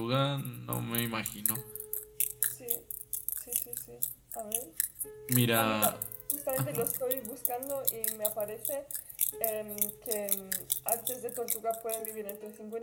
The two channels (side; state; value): both; identical; correlation 1.00